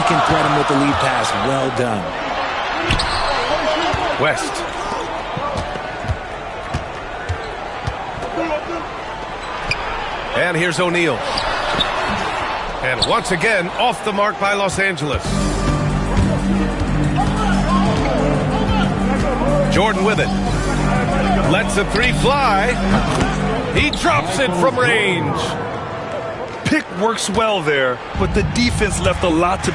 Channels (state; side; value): identical; both; correlation 1.00